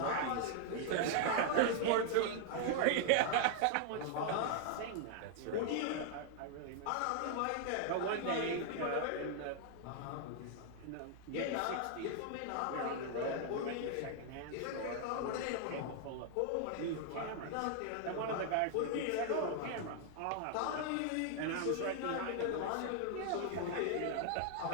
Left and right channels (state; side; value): different; both; correlation 0.00